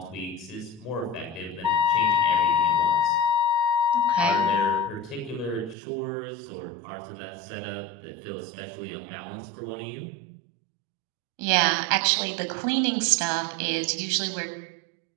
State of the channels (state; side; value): drops out; left; at 5.8 s